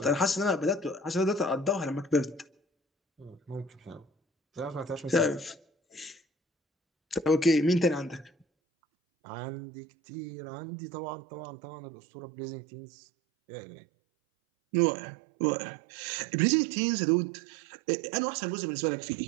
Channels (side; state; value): left; drops out; at 8.5 s